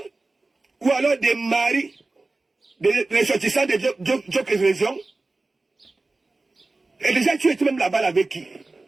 Ou alors des maris. Des ressortissants de d'autres régions. Et déjà tu étais même là-bas avec qui?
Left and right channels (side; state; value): left; quieter; 3.3 dB